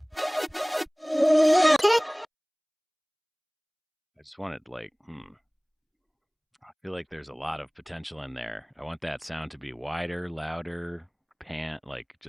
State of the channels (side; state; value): both; identical; correlation 1.00